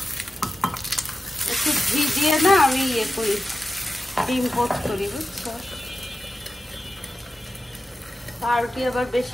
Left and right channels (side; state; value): both; normal; correlation 0.92